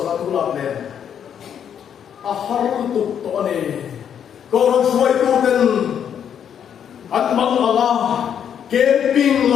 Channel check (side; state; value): right; quieter; 8.6 dB